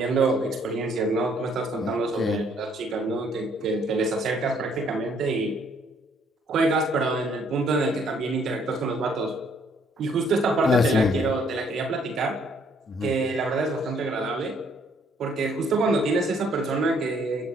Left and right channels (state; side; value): normal; both; correlation 0.65